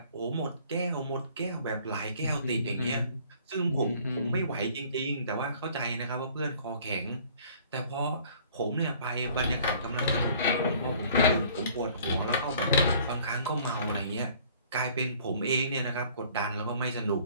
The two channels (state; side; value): inverted; both; correlation -0.54